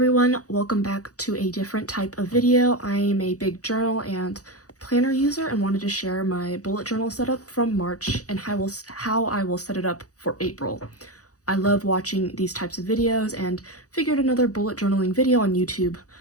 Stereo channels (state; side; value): late; right; 0.67 ms